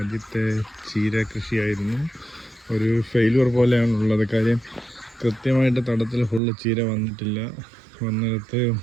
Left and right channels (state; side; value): drops out; left; at 6.4 s